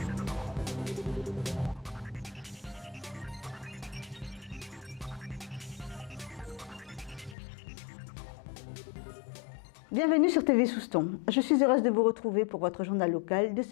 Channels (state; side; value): drops out; right; at 7.4 s